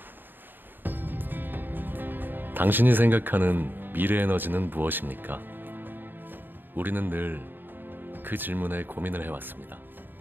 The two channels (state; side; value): late; left; 0.093 ms